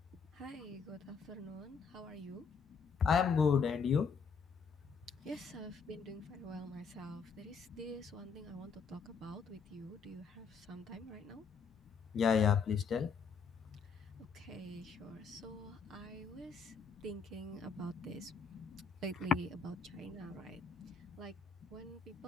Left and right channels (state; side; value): quieter; right; 5.6 dB